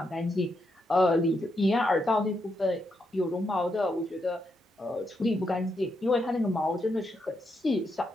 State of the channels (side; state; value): both; normal; correlation 0.81